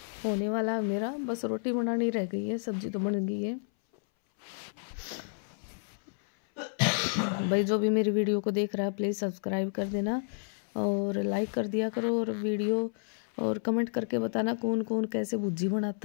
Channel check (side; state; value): right; silent; 57 dB below the other